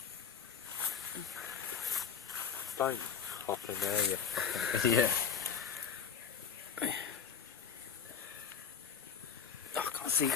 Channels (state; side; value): quieter; right; 7.1 dB